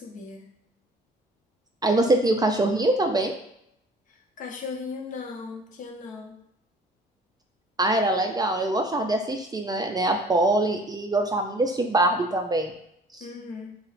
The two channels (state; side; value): normal; both; correlation 0.50